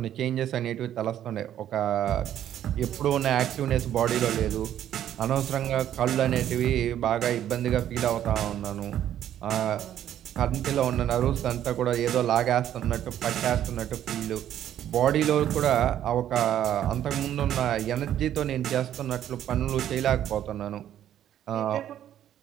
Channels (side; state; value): left; quieter; 11.1 dB